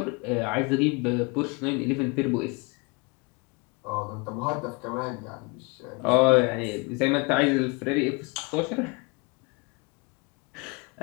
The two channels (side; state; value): right; quieter; 29.1 dB